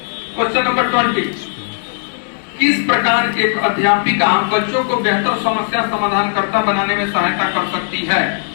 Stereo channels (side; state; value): right; silent; digital silence